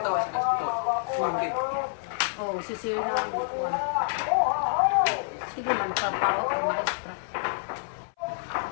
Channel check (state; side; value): silent; right; 59 dB below the other